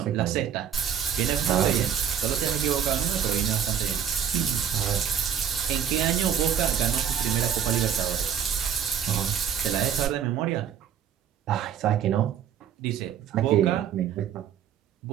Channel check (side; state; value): left; quieter; 8.7 dB